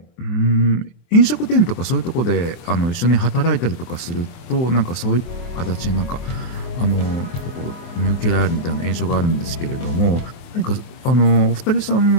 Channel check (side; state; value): right; late; 24 ms